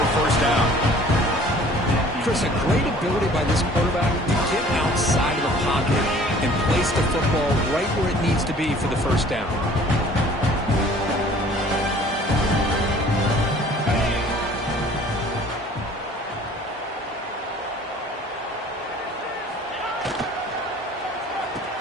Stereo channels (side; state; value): both; normal; correlation 0.51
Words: first down. Chris, a great ability by this quarterback to get outside of the pocket and place the football right where it needs to be for the first down.